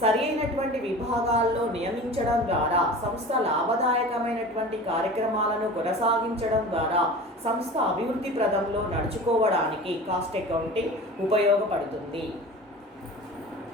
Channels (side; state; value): both; normal; correlation 0.37